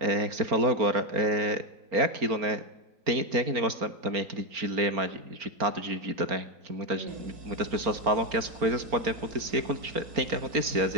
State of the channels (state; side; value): late; left; 4.4 ms